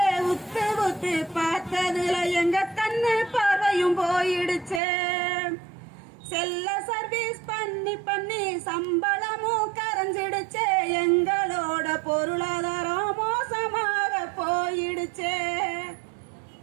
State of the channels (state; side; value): drops out; left; at 4.8 s